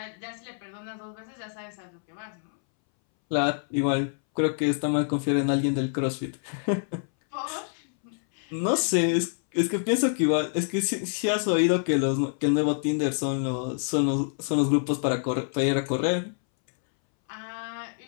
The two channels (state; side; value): silent; right; 60 dB below the other